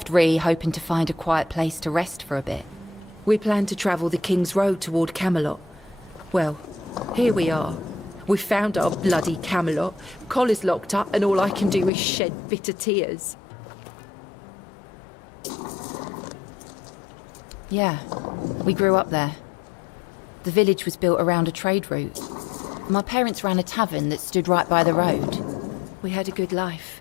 Ree hoping to find a quiet place to rest for a bit. We planned to travel the King's Road toward Camelot. Well, here we are. We found our bloody Camelot. Cole is locked up and all I can do is shed bitter tears. Yeah, we grew up there. The village was built around a trade route. My parents ran a tavern that stood right by the road. We had a good life.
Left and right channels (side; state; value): right; drops out; at 11.9 s